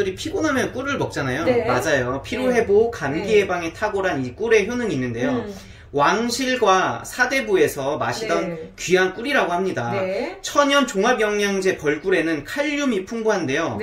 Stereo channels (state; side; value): identical; both; correlation 1.00